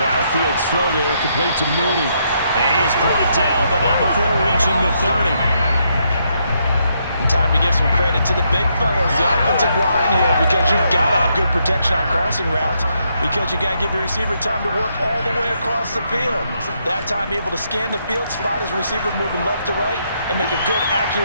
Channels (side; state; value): both; inverted; correlation -0.76